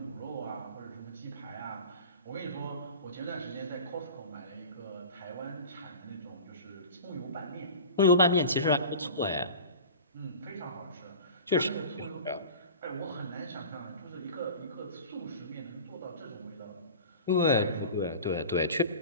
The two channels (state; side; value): inverted; both; correlation -0.36